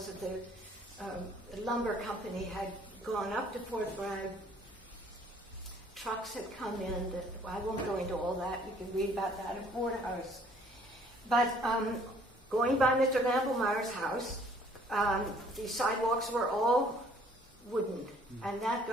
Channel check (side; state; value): both; normal; correlation 0.59